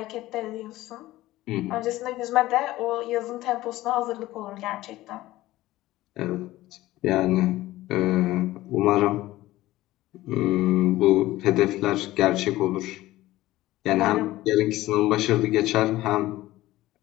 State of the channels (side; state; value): right; quieter; 16.7 dB